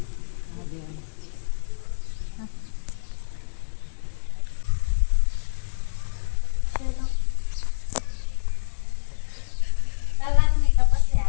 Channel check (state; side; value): silent; right; digital silence